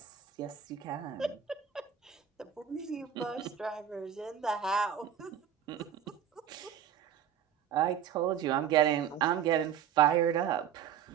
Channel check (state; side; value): quieter; left; 9.0 dB